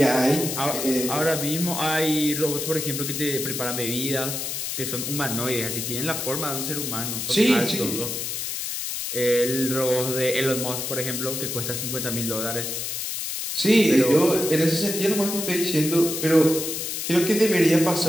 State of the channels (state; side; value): noise; left; hiss, 4 dB below the sound